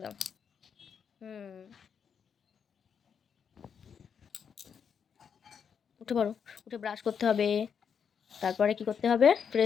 দাও। উঠে পড়ো, উঠে ব্রাশ করতে হবে, তারপরে কি করতে হবে,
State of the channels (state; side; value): quieter; right; 7.1 dB